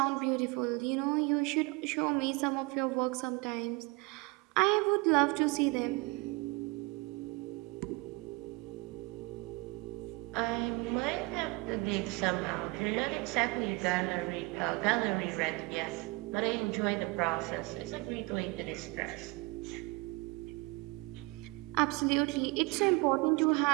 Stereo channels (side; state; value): left; quieter; 25.9 dB